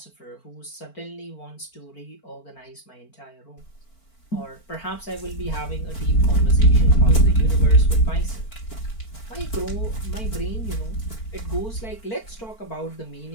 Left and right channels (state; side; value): late; right; 4.5 ms